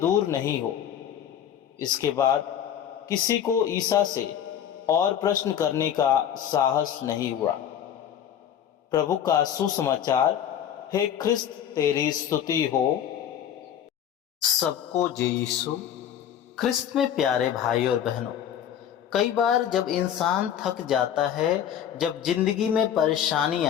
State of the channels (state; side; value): quieter; right; 9.6 dB